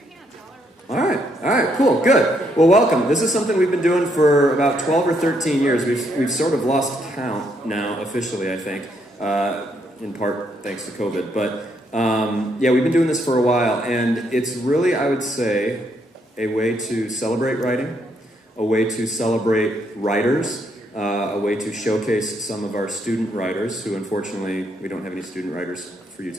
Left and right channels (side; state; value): both; normal; correlation 0.74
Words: All right, cool, good. Well, welcome. This is something we've been doing for about 12 or 13 years. We've sort of lost count now, officially, I think, in part thanks to COVID. But yeah, we've been doing this for a while, and it's really, I would say, a way to celebrate writing, a way to celebrate writers, a way to showcase some of our student writers, who unfortunately, we don't have any student writers for you